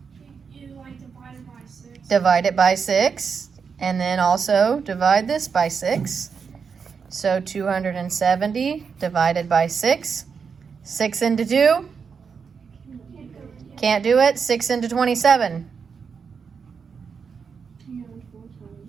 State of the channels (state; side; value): quieter; left; 5.9 dB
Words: You like divide it by 6. Divide it by 6. And then also divide this by 6. So 270 divided by 6. 6 into 2. Can't do it. 6 into 27.